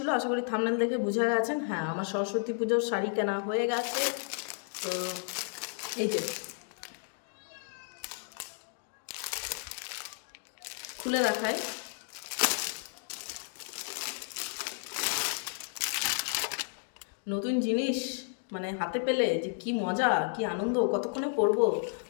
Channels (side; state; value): right; silent; 56 dB below the other